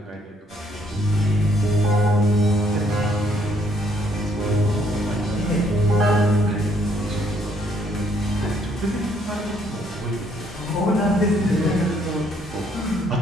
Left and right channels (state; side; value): normal; both; correlation 0.67